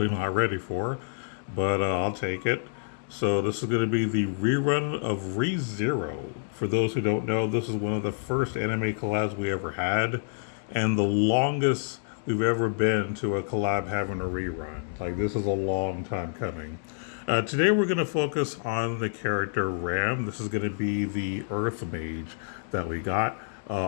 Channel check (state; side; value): silent; right; digital silence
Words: not ready for, but I'll take it. So this is going to be the rerun of ReZero. For those who don't know, this is one of the first anime collabs we ever had, and the longest we've ever been to a collab having a rerun. Like this is a long time coming. Today we're going to focus on the character Ram. This is going to be the Earth Mage that we got.